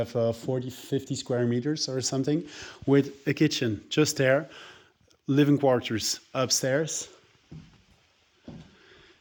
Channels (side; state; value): both; identical; correlation 1.00